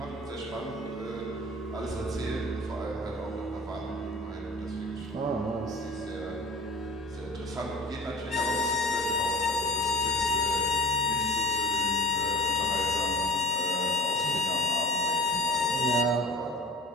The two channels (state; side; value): normal; both; correlation 0.42